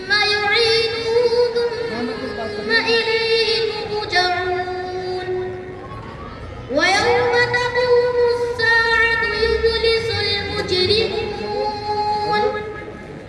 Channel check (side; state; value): both; identical; correlation 1.00